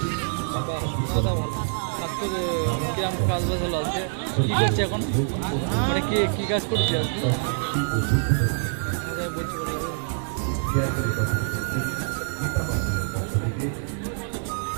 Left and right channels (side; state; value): left; silent; digital silence